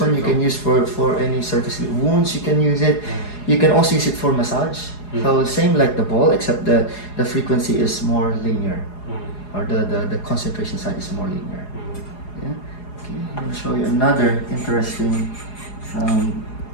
you can use for any surface wounds. You can use it. You can also use it for massage. So same like the ball, except the frequency is more linear, or the concentration side is more linear. Yeah. Okay. I'm going to show you another interesting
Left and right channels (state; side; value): late; right; 4.8 ms